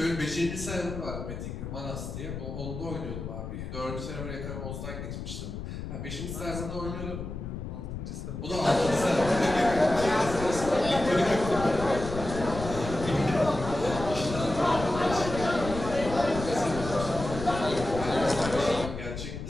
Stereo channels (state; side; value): noise; left; rumble, 7 dB below the sound